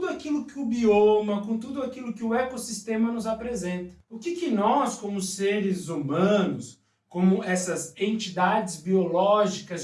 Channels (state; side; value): identical; both; correlation 1.00